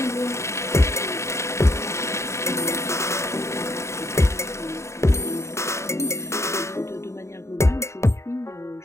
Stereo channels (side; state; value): right; late; 0.14 ms